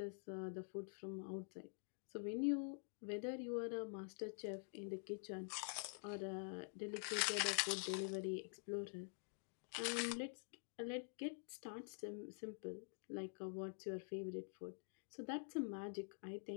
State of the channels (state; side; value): silent; right; digital silence